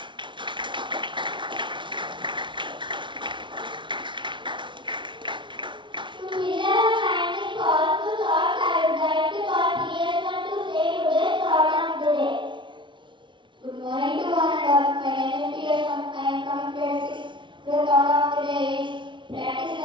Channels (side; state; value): left; late; 0.24 ms